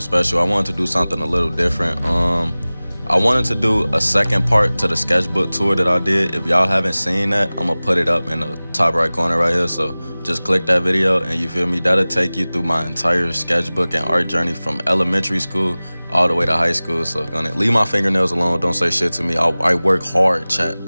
I wanted to do something a little different. I wanted to do a second part to the sketchbook tour that I did. If y'all haven't seen that, I'm gonna put it up in the top right corner right here. So just click that video and you feel me? That'll take you through my entire sketchbook and art journey from elementary school all the way to high school. So gonna leave my fingernails alone. Don't say shit to me. I work hard, chat.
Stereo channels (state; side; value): inverted; both; correlation -0.99